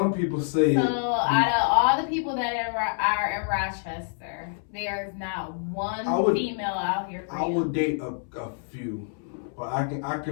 people say. So out of all the people that are in Rochester, there's not one female out here for you. I would date a few, but I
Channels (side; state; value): right; silent; 60 dB below the other